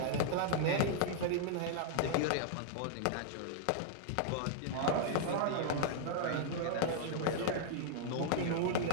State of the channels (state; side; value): different; both; correlation -0.01